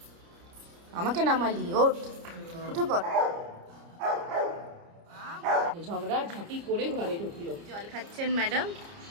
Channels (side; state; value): left; late; 29 ms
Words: আমাকে নামালি, উঠে পড়। ঝগড়া ঝাঁটি করে ঘরে ঢুকলো। জল খাচ্ছেন ম্যাডাম?